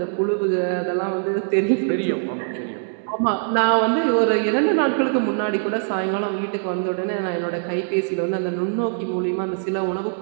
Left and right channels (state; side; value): silent; left; 64 dB below the other